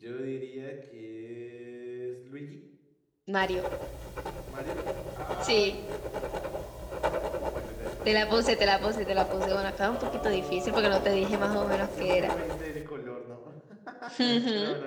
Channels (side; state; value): both; identical; correlation 1.00